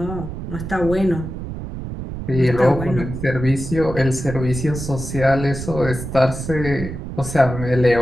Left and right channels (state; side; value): noise; right; rumble, 8 dB below the sound